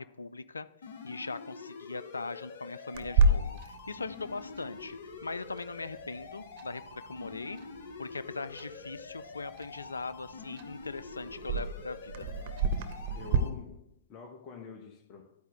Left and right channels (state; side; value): inverted; both; correlation -0.48